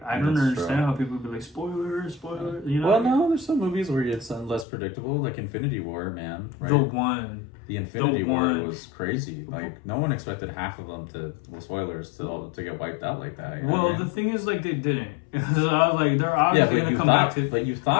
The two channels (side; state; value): right; drops out; at 4.7 s